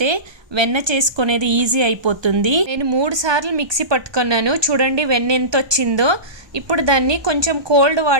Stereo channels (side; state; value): left; late; 1.2 ms